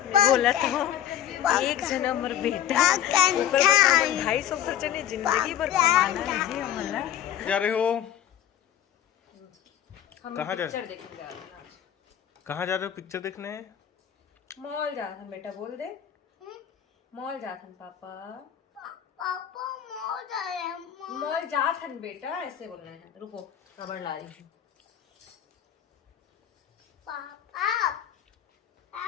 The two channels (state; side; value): quieter; right; 10.8 dB